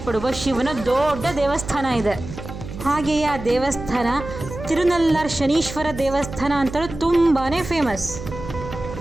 ಶಿವನ ದೊಡ್ಡ ದೇವಸ್ಥಾನ ಇದೆ. ಹಾಗೆಯೇ ಆ ದೇವಸ್ಥಾನ ತಿರುನಲ್ಲಾರ್ ಶನೀಶ್ವರ ದೇವಸ್ಥಾನ ಅಂತಲೂ ತುಂಬಾ ಫೇಮಸ್.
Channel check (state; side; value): noise; right; hum, 11 dB below the sound